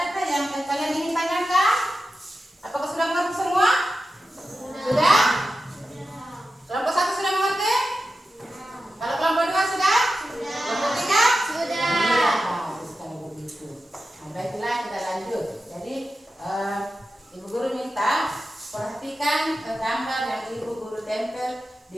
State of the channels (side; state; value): both; normal; correlation 0.92